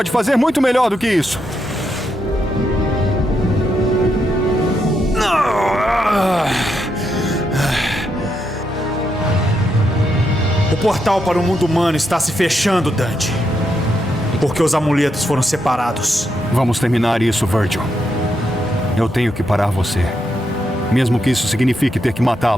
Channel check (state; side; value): normal; both; correlation 0.81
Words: fazer muito melhor do que isso. O portal para o mundo humano está se fechando, Dante. Porque os amuletos foram separados. Vamos terminar isso, Virgil. Eu tenho que parar você. Mesmo que isso signifique ter que